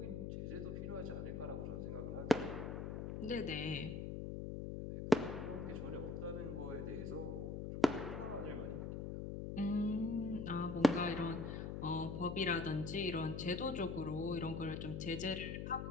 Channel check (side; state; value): left; noise; hum, 4 dB below the sound